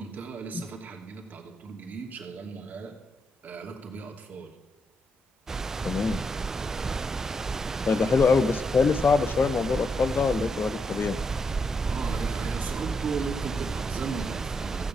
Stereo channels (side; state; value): both; normal; correlation 0.81